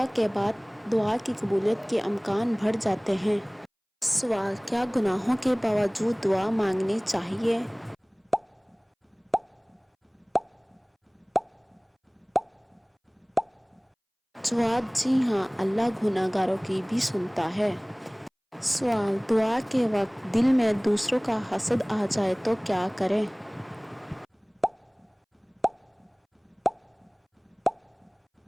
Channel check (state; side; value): identical; both; correlation 1.00